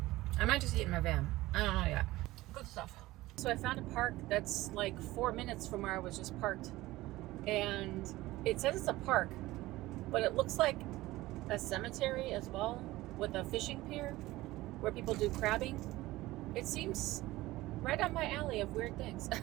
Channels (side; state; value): left; quieter; 18.1 dB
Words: I might just eat in my van. I don't know yet. Good stuff. So I found a park that's like 4 minutes from where I was just parked. And it says it's a park, but it looks like a cemetery as well with a fishing pier where people do crabbing. It seems right on my alley of weird things.